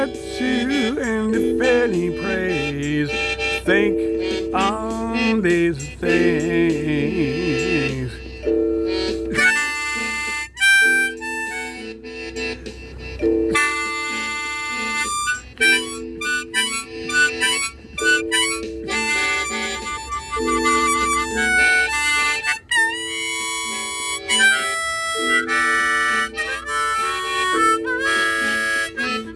and if any praise, think on these things.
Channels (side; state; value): both; identical; correlation 1.00